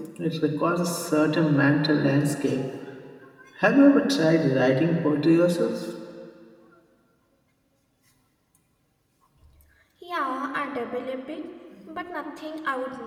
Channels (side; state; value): both; identical; correlation 1.00